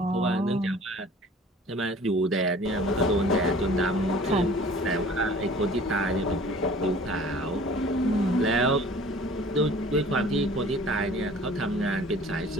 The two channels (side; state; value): both; normal; correlation 0.48